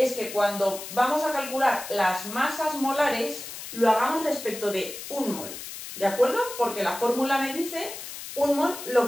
que cuando vamos a calcular las masas molares, lo hagamos respecto de un mol, ¿de acuerdo? Porque la fórmula me dice un mol lo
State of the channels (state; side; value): noise; left; hiss, 10 dB below the sound